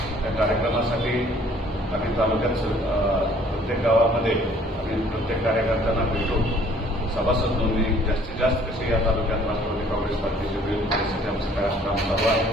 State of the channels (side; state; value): both; normal; correlation 0.57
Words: त्या कार्यक्रमासाठी आम्ही तालुक्यात प्रत्येक गावामध्ये आणि प्रत्येक कार्यकर्त्यांना भेटून सभासद नोंदणी जास्तीत जास्त कशी या तालुक्यात राष्ट्रवादी काँग्रेस पार्टीचे होईल यासाठी आमचं काय काम चालू आहे.